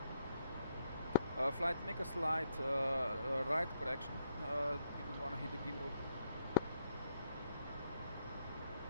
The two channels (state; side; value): inverted; both; correlation -0.75